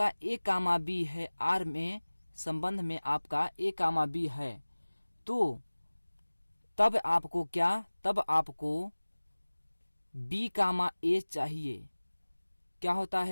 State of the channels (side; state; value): both; inverted; correlation -1.00